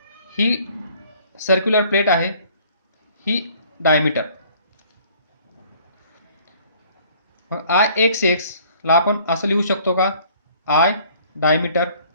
ही सर्क्युलर प्लेट आहे, ही डायमीटर. मग आय एक्स एक्स ला आपण असं लिहू शकतो का? आय डायमीटर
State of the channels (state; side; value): inverted; both; correlation -0.56